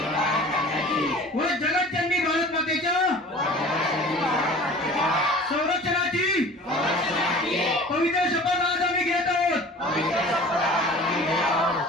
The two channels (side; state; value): both; normal; correlation 0.43